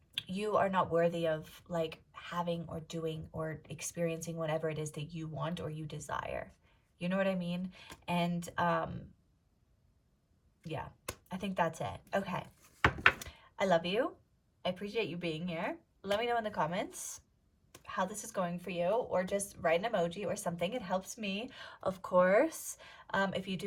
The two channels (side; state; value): both; identical; correlation 1.00